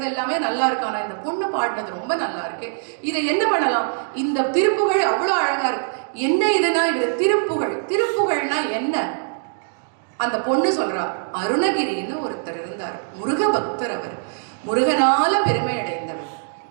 எல்லாமே நல்லா இருக்கு, ஆனா இந்த பொண்ணு பாடினது ரொம்ப நல்லா இருக்கு, இதை என்ன பண்ணலாம், இந்த திருப்புகழ் அவ்வளோ அழகா இருக்கு, என்ன இதுனா இது திருப்புகழ். திருப்புகழ்னா என்ன? அந்த பொண்ணு சொல்றா, அருணகிரின்னு ஒருத்தர் இருந்தார், முருக பக்தர். அவர் முருகனால பெருமை அடைந்தவர்,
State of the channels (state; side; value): silent; left; digital silence